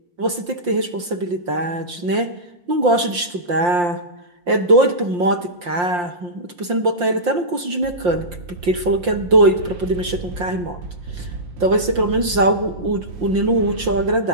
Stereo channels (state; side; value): late; left; 5.7 ms